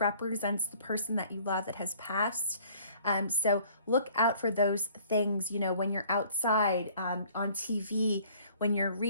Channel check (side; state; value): both; inverted; correlation -0.55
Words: the person that you love that has passed. So look out for those things, when you're outside, on TV, when you're